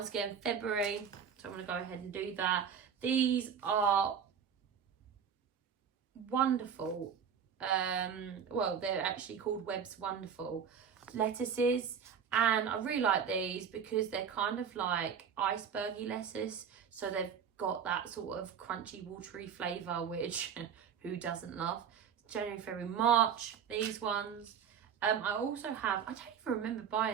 again, February, so I'm going to go ahead and do that. These are wonderful. Well, they're actually called Webb's Wonderful lettuces, And I really like these because they're kind of like icebergy lettuce. So they've got that sort of crunchy, watery flavour, which who doesn't love? January, February, March, these ones. I also have, I don't even remember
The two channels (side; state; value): left; quieter; 7.5 dB